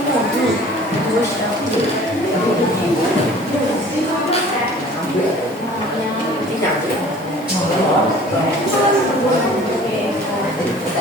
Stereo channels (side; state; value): right; noise; hiss, 26 dB below the sound